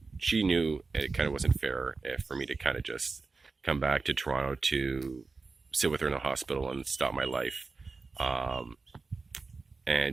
She knew it kind of wasn't fair for me to kind of just come back to Toronto to sit with her in the hospital and stop my life.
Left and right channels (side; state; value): left; quieter; 4.2 dB